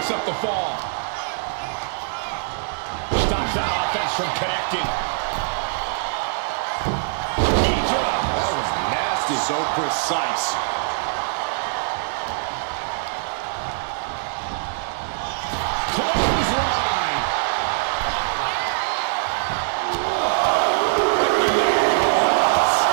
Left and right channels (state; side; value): silent; left; digital silence